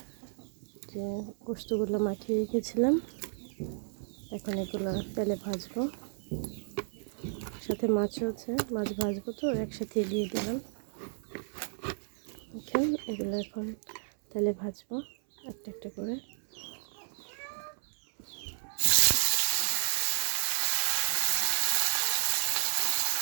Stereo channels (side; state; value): left; silent; 56 dB below the other